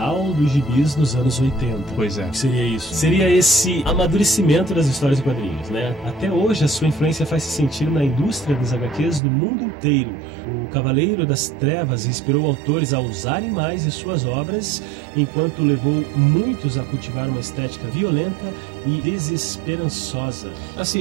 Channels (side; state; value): left; drops out; at 9.2 s